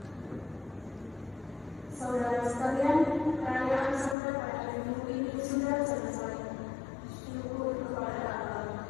Saudara sekalian, perayaan sampai pada hari Minggu ini sudah selesai. Syukur kepada Allah.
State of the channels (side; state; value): right; drops out; at 4.2 s